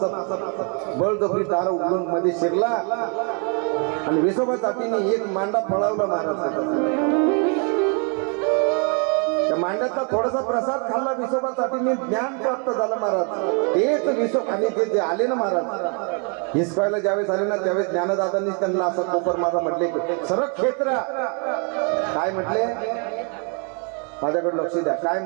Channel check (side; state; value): left; quieter; 38.0 dB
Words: बळजबरी दार उघडून मध्ये शिरला आणि विसोबासाठीने एक मांडा पळवला महाराज. त्या मांड्याचा थोडासा प्रसाद खाल्ला विसोबासाठीने, ज्ञान प्राप्त झालं महाराज. तेच विसोब आणि ते जे आले ना महाराज हिसकायला ज्यावेळेस आले ना त्यावेळेस ज्ञानदादांनी त्यांना असं कोपर माझा म्हटले सरक क्षेत्रा. काय म्हटले, माझ्याकडे लक्ष द्या. काय